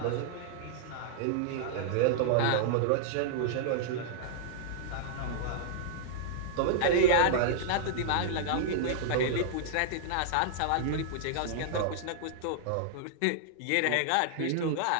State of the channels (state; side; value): different; both; correlation -0.01